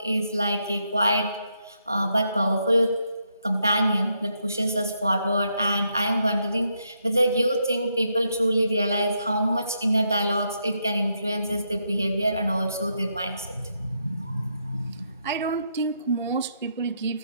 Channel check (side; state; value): both; inverted; correlation -0.79